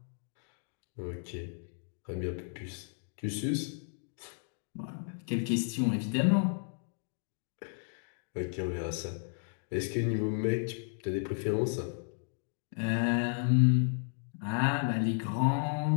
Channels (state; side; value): silent; right; 55 dB below the other